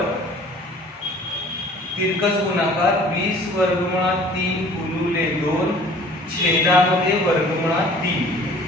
तिरकस गुणाकार 20 वर्गमुळात 3 गुणिले 2 छेदामध्ये वर्गमुळात 3,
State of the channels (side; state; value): both; normal; correlation 0.50